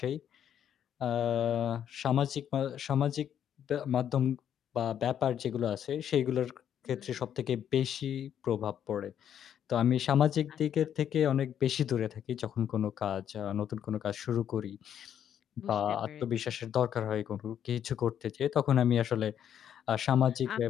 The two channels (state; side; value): quieter; right; 9.5 dB